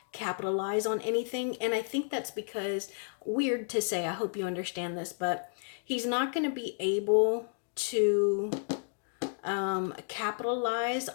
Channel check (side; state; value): right; silent; digital silence